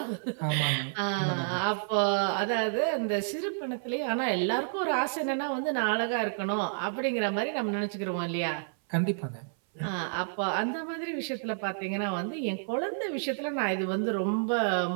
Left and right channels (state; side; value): silent; left; 58 dB below the other